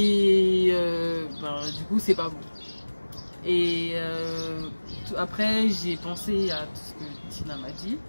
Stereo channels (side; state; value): both; inverted; correlation -1.00